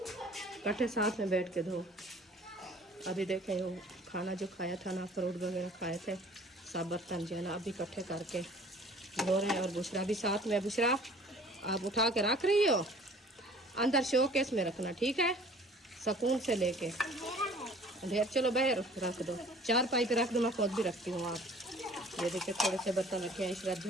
इकट्ठे साथ में बैठ के धो। अभी देखें वो खाना जो खाया था ना, फ्रूट वगैरह खाए थे, सब बर्तन जो है ना अभी इकट्ठे करके धो रहे हैं। और बुशरा भी साथ में। बुशरा आप उठा के रख रही हो, अंदर शोकेस में रखना, ठीक है, सुकून से लेके। ढेर चलो बाहर रख दो, 4 पाइप रख दो, मैं खुद भी रखती हूँ। आप ये देखिए थोड़े से बर्तन रखे हैं, इशरत जो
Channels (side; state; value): both; normal; correlation 0.50